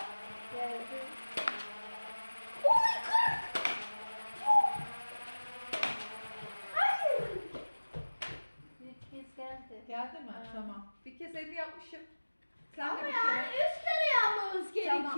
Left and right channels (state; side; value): inverted; both; correlation -1.00